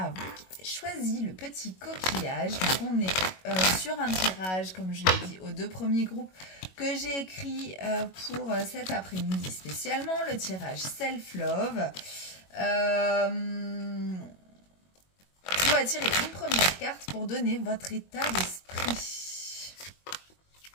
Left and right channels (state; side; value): late; right; 21 ms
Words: vous qui avez choisi le petit coquillage. Donc on est sur un tirage, comme je l'ai dit, aux 2 premiers groupes que j'ai écrit pour cet après-midi spécialement, le tirage Self-Love. On va tirer une première carte pour donner votre état d'esprit.